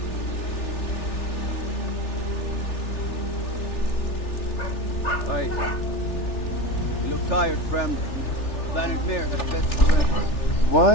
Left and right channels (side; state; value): right; late; 3.4 ms